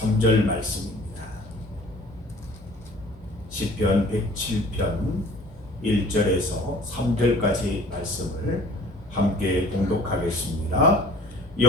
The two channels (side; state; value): both; normal; correlation 0.48